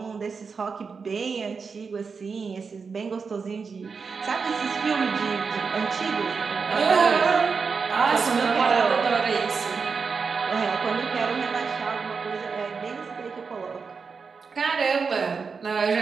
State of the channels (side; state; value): left; quieter; 5.3 dB